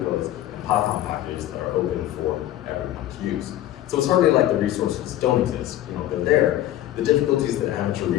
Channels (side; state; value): right; quieter; 13.4 dB